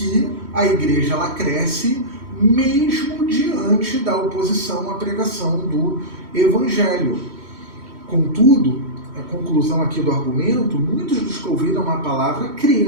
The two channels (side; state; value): left; late; 3.1 ms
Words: a igreja ela cresce mesmo diante da oposição à pregação do evangelho. Contudo, a conclusão aqui do argumento, muitos dos que ouviram a palavra